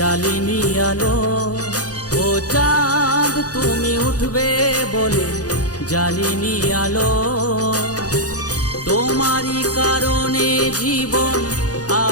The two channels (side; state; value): right; late; 0.67 ms